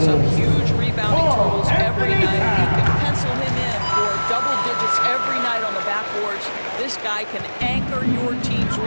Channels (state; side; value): inverted; both; correlation -1.00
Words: up huge rebounding totals every night. You can pencil him in for double digits every night on the backboards. This guy can anchor your team's